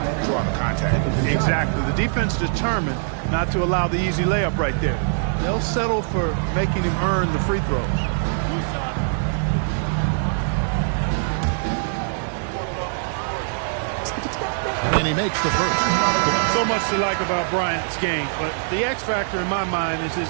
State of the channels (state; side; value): silent; left; 60 dB below the other